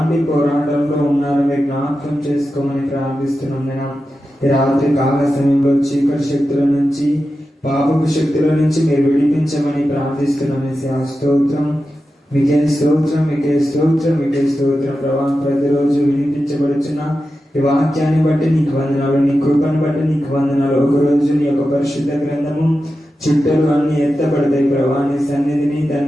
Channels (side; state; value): both; normal; correlation 0.91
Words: పోరాటంలో ఉన్నారో మీరు జ్ఞాపకం చేసుకోమని ప్రార్థిస్తున్నాం. నేను ఈ రాత్రి కాల సమయంలో చీకటి శక్తుల నుంచి, పాపపు శక్తుల నుంచి మీరు విడిపించమని ప్రార్థిస్తున్నాం. స్తోత్రం, మీకే స్తోత్రం, మీకే స్తోత్రం, మీకే స్తోత్రం ప్రభా. ప్రతిరోజు వినిపించబడుచున్న ఈ వాక్యాన్ని బట్టి నీకు వందనాలు, నీ కృపను బట్టి నీకు వందనాలు. ఒకరోజు నీ యొక్క పరిశుద్ధ గ్రంథము చుట్టలు అన్ని ఎత్తబడతాయి ప్రభా. నీ సన్నిధిని